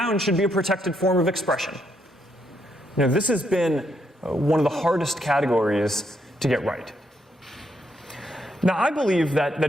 should be a protected form of expression. This has been one of the hardest categories to get right. Now, I believe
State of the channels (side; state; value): both; normal; correlation 0.76